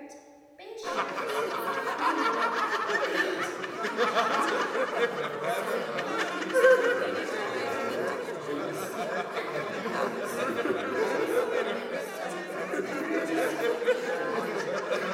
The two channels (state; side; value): identical; both; correlation 1.00